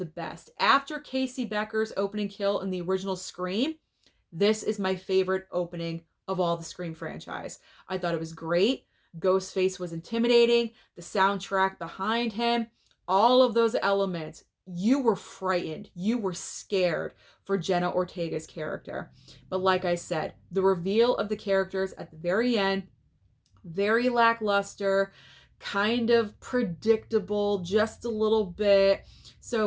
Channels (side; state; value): both; identical; correlation 1.00